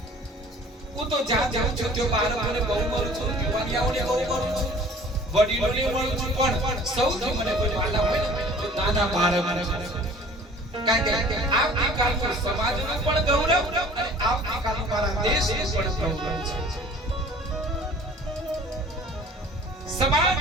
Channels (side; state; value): both; normal; correlation 0.48